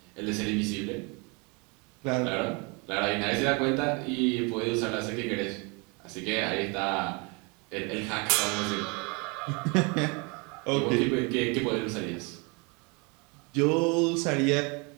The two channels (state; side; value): quieter; left; 30.7 dB